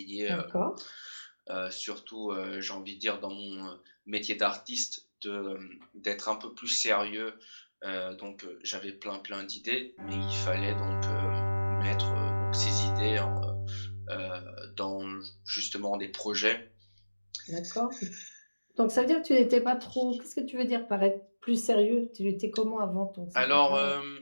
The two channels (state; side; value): inverted; both; correlation -1.00